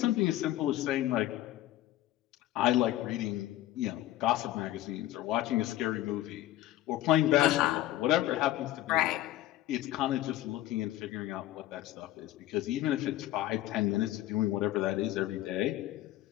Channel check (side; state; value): right; quieter; 14.7 dB